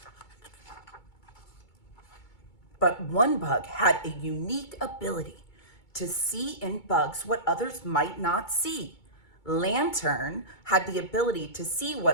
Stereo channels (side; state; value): right; late; 2.2 ms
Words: But one bug had a unique ability to see in bugs what others might not see. Lantern had the ability to see